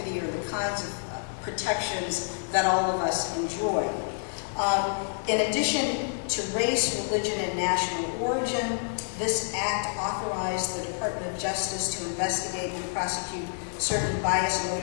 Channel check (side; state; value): right; silent; digital silence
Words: or the kinds of protections that all of us enjoy. In addition to race, religion, and national origin, this act authorized the Department of Justice to investigate and prosecute certain